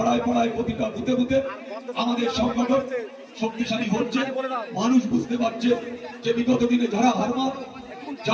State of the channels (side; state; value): both; identical; correlation 1.00